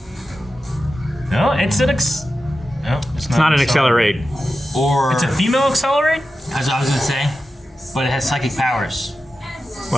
No, it's an No, It's not an accelerate. Or It's a female accelerate? as I was gonna say, but it has psychic powers.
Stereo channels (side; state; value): both; normal; correlation 0.92